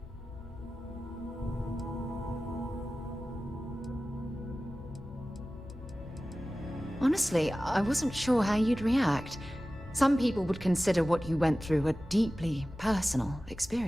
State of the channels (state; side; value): normal; both; correlation 0.96